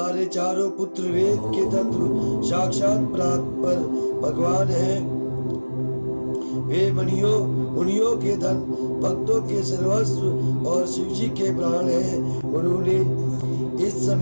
चारों पुत्र वेद के तत्व साक्षात पर भगवान हैं। वे मुनियों के धन, भक्तों के सर्वस्व और शिव जी के प्राण हैं। उन्होंने इस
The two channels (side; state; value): both; inverted; correlation -1.00